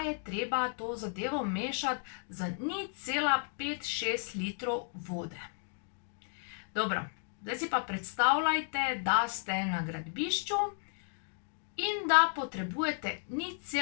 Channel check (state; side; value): silent; right; 55 dB below the other